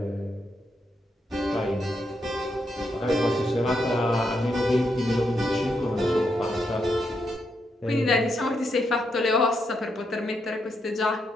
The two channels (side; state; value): both; normal; correlation 0.80